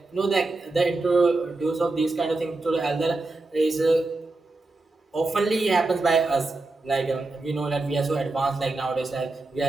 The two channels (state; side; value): quieter; left; 3.2 dB